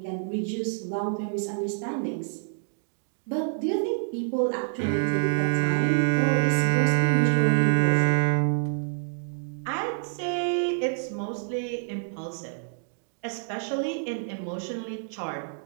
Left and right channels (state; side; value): silent; left; digital silence